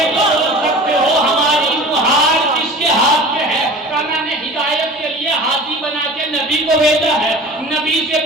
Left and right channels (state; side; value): normal; both; correlation 0.40